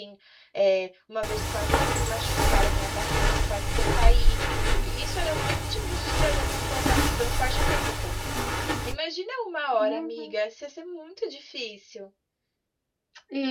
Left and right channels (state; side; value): identical; both; correlation 1.00